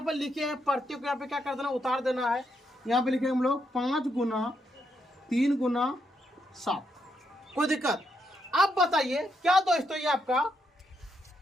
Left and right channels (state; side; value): normal; both; correlation 0.79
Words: पे लिखे हैं प्रत्येक को यहाँ पे क्या कर देना? उतार देना है। यहाँ पे लिखेंगे हम लोग 5 गुना 3 गुना 7, कोई दिक्कत? अब बताइए क्या दोस्तों, ये आपका